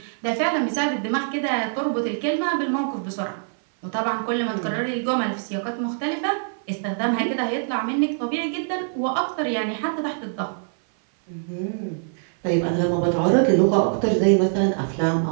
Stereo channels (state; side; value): silent; left; 59 dB below the other